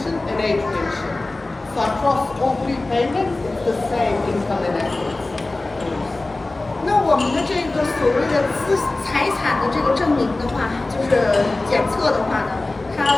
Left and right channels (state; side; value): quieter; right; 3.0 dB